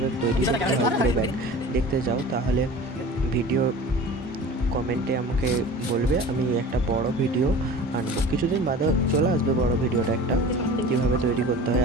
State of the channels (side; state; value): both; normal; correlation 0.39